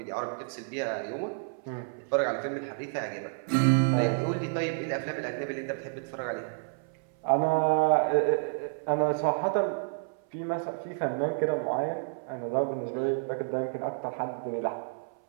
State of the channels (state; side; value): silent; left; 58 dB below the other